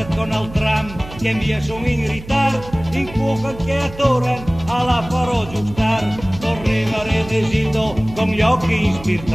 con il tram, che via sono in ritardo, in cuoca che attoran, alla farò giustar. Correva Re Desildo con gli occhi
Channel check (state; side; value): noise; right; hum, 15 dB below the sound